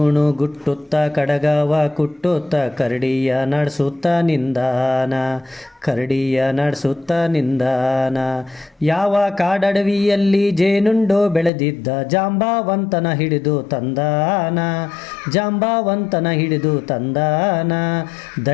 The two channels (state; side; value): drops out; right; at 11.5 s